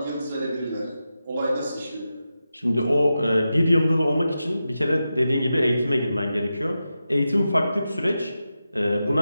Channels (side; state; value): both; inverted; correlation -0.91